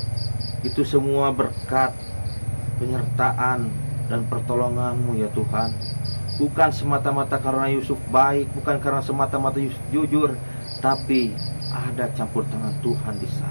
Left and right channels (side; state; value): both; inverted; correlation -1.00